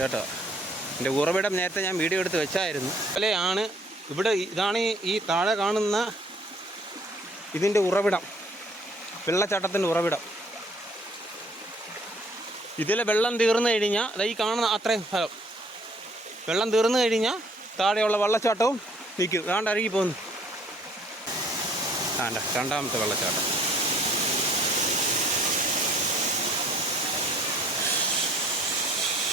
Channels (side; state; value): both; normal; correlation 0.60